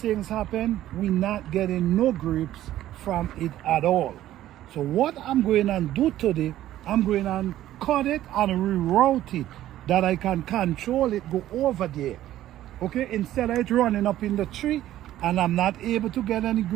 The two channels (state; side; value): quieter; left; 13.4 dB